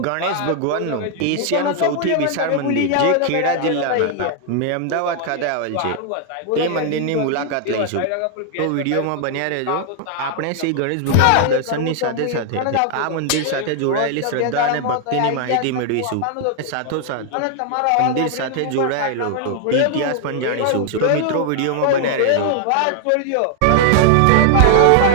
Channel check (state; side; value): different; both; correlation 0.00